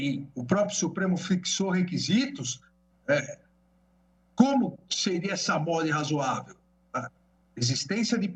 o próprio Supremo fixou requisitos, como seria essa mora irrazoável? A existência de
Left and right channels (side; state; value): both; identical; correlation 1.00